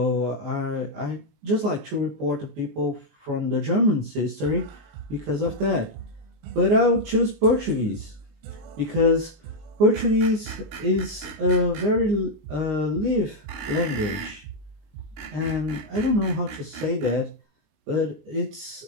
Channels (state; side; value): late; left; 19 ms